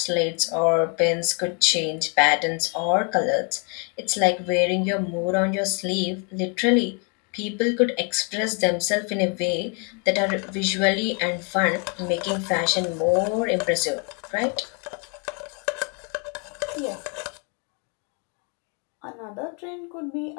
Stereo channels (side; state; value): right; quieter; 37.1 dB